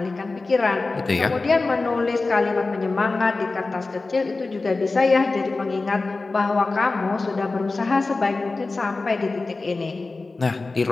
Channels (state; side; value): quieter; right; 3.6 dB